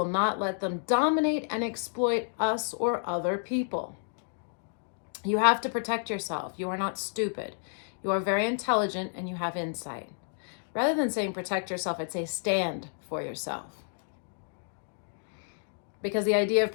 not let them dominate and exploit us or other people. You have to protect yourself. You are not stupid. You are very intelligent and you have insight. Rather than saying protect yourself, I'd say stand for yourself. Because the idea of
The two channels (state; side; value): silent; right; digital silence